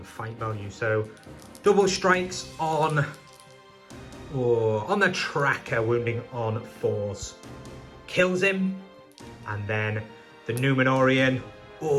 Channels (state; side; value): identical; both; correlation 1.00